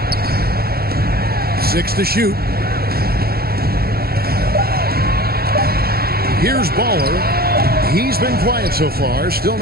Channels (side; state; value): left; late; 0.45 ms